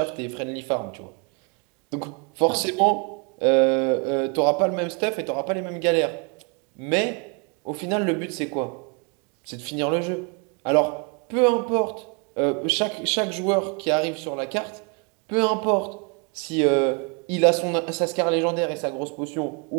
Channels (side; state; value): left; quieter; 34.0 dB